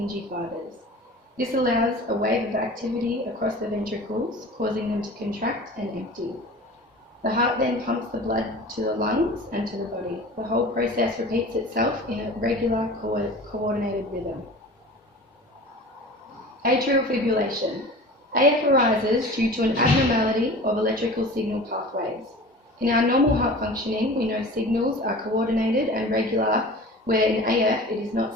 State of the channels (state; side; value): normal; both; correlation 0.39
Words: fibers. This allows a wave of activity across the ventricles, causing them to contract and empty. The heart then pumps the blood to the lungs and to the body. The whole process repeats itself in a regular, coordinated rhythm. Atrial fibrillation. AF arises due to an abnormality of electrical signal pathways. In our normal heart functioning, we know signals are coordinated and regular, where in AF it is